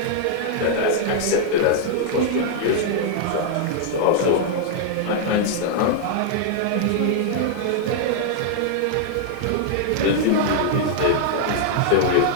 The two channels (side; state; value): both; different; correlation -0.01